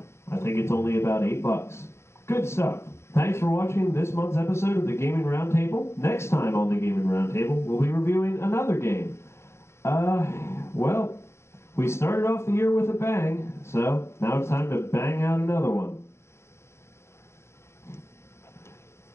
I think it's only about $8. Good stuff. Thanks for watching this month's episode of the Gaming Roundtable. Next time on the Gaming Roundtable, we'll be reviewing another game. Well, we started off the year with a bang, so now it's time to bang out another one.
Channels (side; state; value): right; late; 0.13 ms